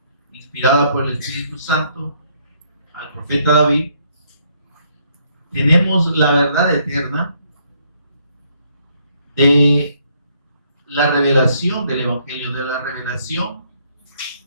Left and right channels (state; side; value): inverted; both; correlation -0.69